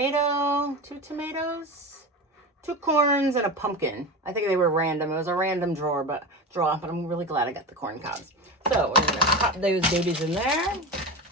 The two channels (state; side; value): normal; both; correlation 0.24